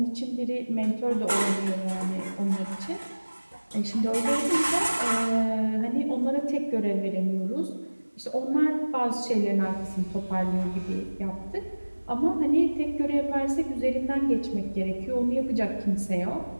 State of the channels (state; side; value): inverted; both; correlation -1.00